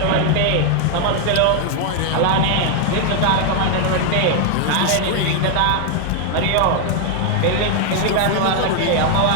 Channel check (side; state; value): both; different; correlation 0.00